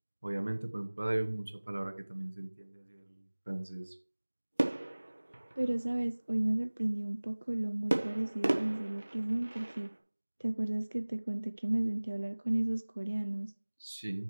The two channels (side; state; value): both; inverted; correlation -1.00